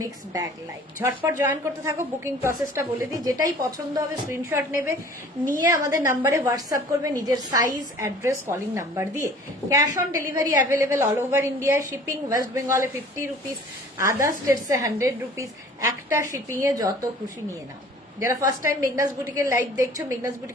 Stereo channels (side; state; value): both; normal; correlation 0.48